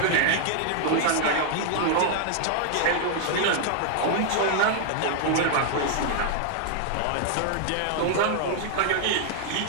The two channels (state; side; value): different; both; correlation -0.01